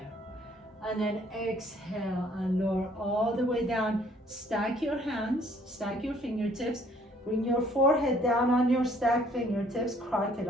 And then exhale and lower all the way down. Stack your hands, stack your fingertips. Bring your forehead down on your stacked fingertips,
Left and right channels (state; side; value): normal; both; correlation 0.61